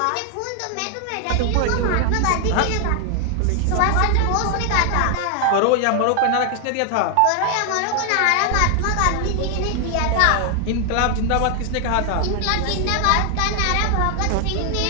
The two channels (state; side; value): different; both; correlation 0.00